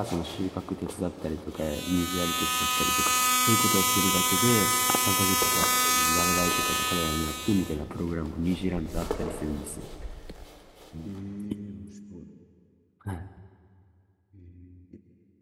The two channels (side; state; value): both; identical; correlation 1.00